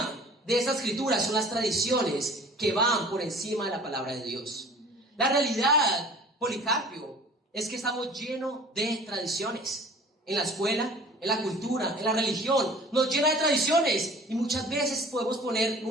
de esta escritura son las tradiciones que van por encima de la palabra de Dios. La realidad, Policarpio, es que estamos llenos de tradiciones. En la escuela, en la cultura, en la religión, nos llena de tradiciones. Y muchas veces podemos poner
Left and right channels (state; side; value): normal; both; correlation 0.46